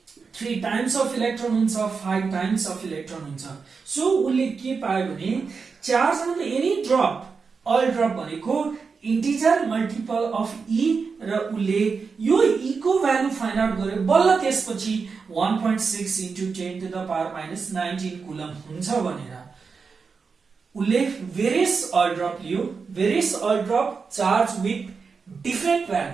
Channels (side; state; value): left; quieter; 5.1 dB